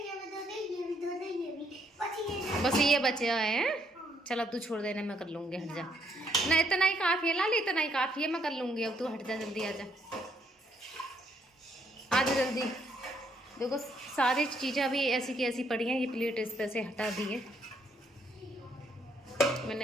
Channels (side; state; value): both; normal; correlation 0.71